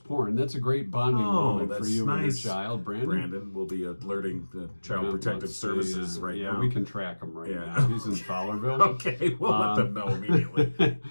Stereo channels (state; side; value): inverted; both; correlation -1.00